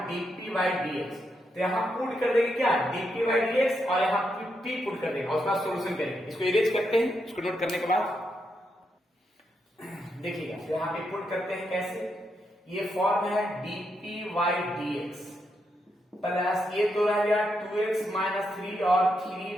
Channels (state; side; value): normal; both; correlation 0.82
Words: dp बाई dx, तो यहाँ पुट कर देंगे क्या dp बाई dx और यहाँ p पुट कर देंगे और उसका सॉल्यूशन करेंगे। इसको इरेज करते हैं, इसको नोट करने के बाद देखिएगा, तो यहाँ पे पुट करते हैं कैसे, ये फॉर्म है dp बाई dx प्लस ये तो रह गया 2x माइनस 3 और